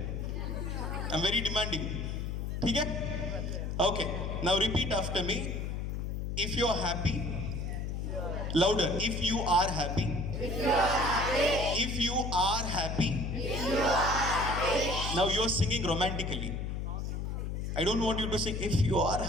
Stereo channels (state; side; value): noise; left; hum, 3 dB below the sound